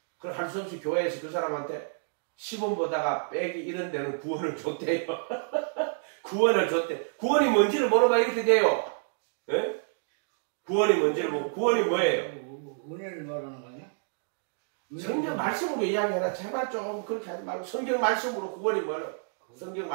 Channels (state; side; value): silent; left; digital silence